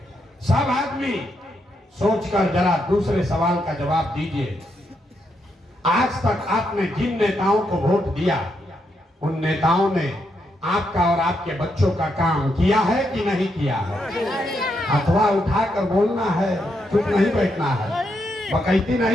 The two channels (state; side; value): normal; both; correlation 0.80